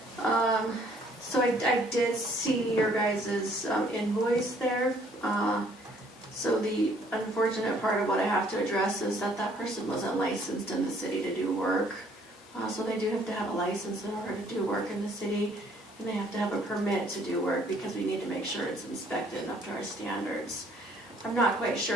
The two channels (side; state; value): both; normal; correlation 0.62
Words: So I did see your guys' invoice there. So the unfortunate part of what I have to address is that person wasn't licensed in the city to do work. So they do have to have a license in order to do work in the city, and they have to have a permit to do work because we need to make sure it's inspected up to our standards. I'm not quite